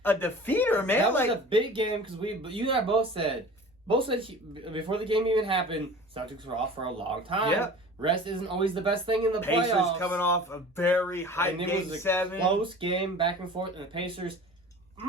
defeater, man. That was a big game because you and I both said before the game even happened, Celtics were off for a long time. Yeah. Rest isn't always the best thing in the Pacers playoffs. Coming off a very high game 7. Close game, back and forth, and the Pacers,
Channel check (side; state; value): both; normal; correlation 0.41